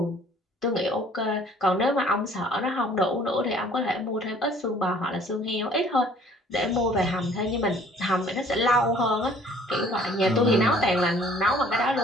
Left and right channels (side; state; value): both; normal; correlation 0.55